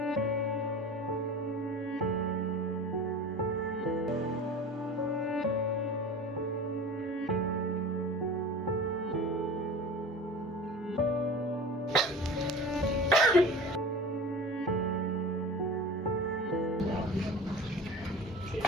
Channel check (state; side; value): normal; both; correlation 0.35